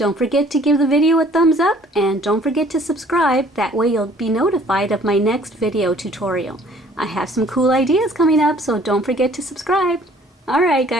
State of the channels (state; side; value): normal; both; correlation 0.56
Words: forget to give the video a thumbs up, and don't forget to subscribe. That way you'll be notified of my next video tutorial. I have some cool ideas coming up, so don't forget to subscribe. Alright